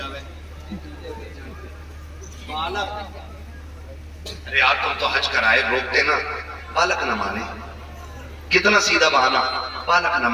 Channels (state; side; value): identical; both; correlation 1.00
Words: ہوئے، بالک، ارے یار تم تو حج کرائے روکتے نا، بالک نہ مانے، کتنا سیدھا بہانا، بالک نہ